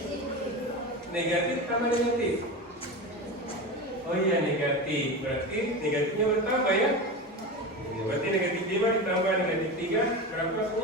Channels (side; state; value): both; normal; correlation 0.24